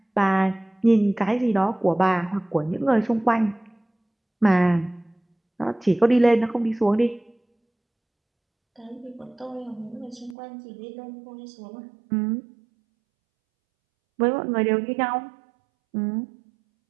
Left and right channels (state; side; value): drops out; left; at 10.4 s